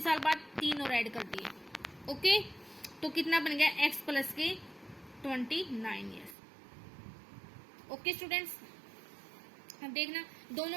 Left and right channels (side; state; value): left; drops out; at 6.4 s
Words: साल बाद 3 और ऐड कर दिए। ओके, तो कितना बन गया, एक्स प्लस के 29 years। ओके स्टूडेंट्स, अब देखना